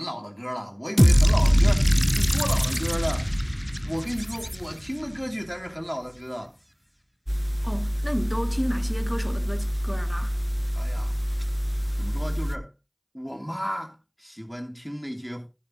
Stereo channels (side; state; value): both; identical; correlation 1.00